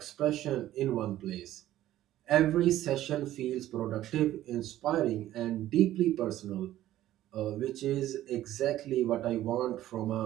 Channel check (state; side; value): quieter; left; 13.7 dB